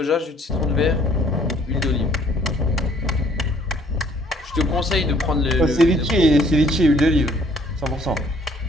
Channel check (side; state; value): both; normal; correlation 0.60